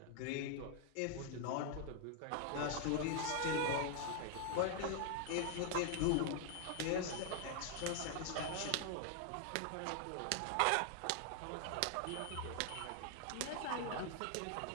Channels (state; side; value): different; both; correlation 0.00